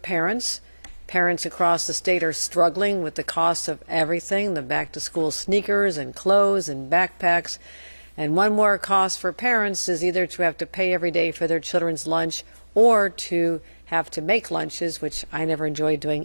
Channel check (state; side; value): inverted; both; correlation -1.00